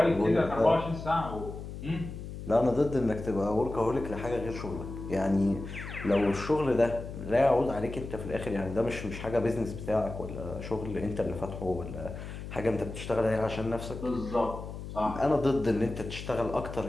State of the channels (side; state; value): left; noise; hum, 9 dB below the sound